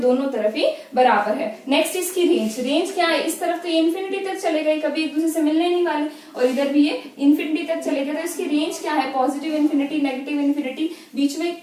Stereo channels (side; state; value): both; identical; correlation 1.00